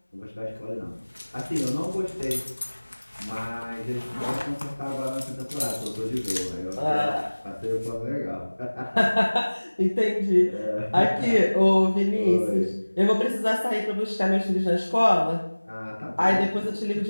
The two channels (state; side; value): inverted; both; correlation -1.00